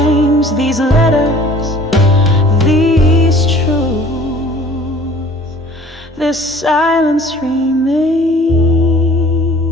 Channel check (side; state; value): both; normal; correlation 0.50